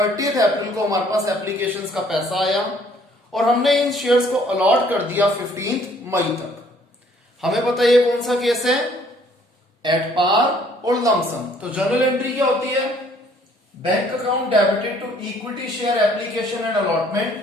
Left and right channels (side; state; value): both; normal; correlation 0.61